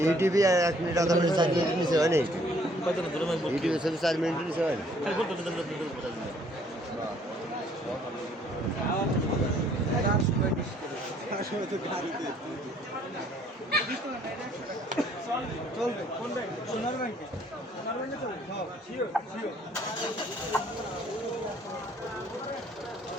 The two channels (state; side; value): normal; both; correlation 0.62